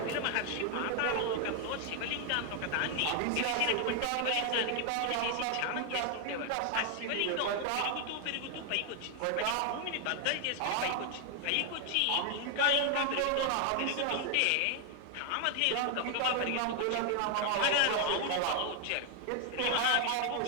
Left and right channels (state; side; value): different; both; correlation 0.00